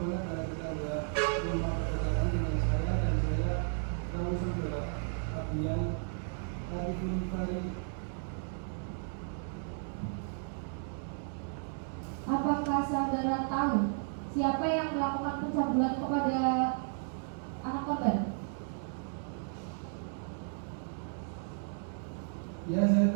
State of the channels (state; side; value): silent; left; 55 dB below the other